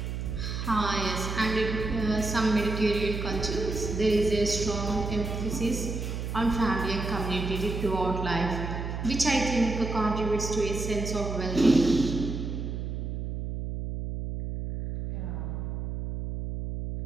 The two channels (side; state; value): right; noise; hum, 4 dB below the sound